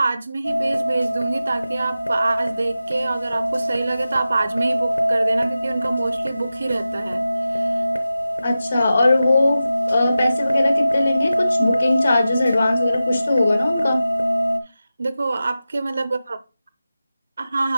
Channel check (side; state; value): both; inverted; correlation -0.94